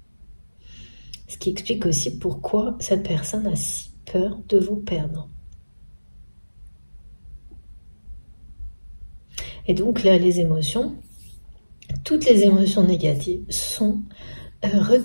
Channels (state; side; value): inverted; both; correlation -1.00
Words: Ce qui explique aussi pourquoi cette personne a si peur de vous perdre. Et donc là, les émotions, toutes les émotions négatives sont